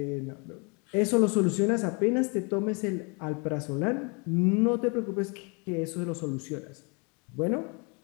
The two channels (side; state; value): right; quieter; 32.5 dB